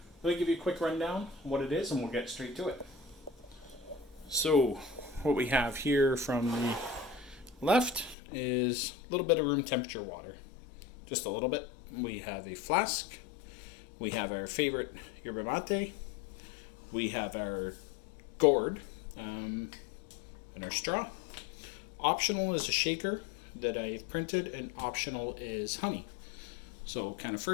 let me give you a quick rundown on what it is and we'll get straight to it. So what we have here from the left is a little bit of room temperature water. Just a little bit. We have a flask. We have our favorite yerba mate. We have our gourd and our straw. Optional is a shaker that I've printed, and optional is honey. So kind of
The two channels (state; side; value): drops out; right; at 8.2 s